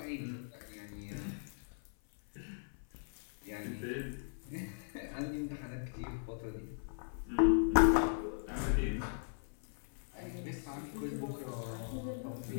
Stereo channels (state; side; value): silent; right; 52 dB below the other